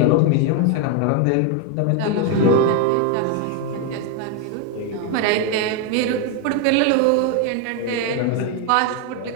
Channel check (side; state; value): both; different; correlation 0.01